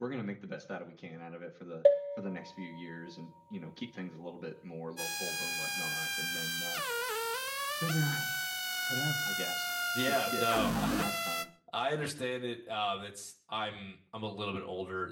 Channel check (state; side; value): identical; both; correlation 1.00